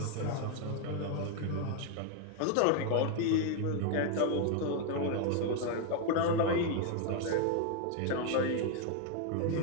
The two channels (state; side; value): different; both; correlation 0.01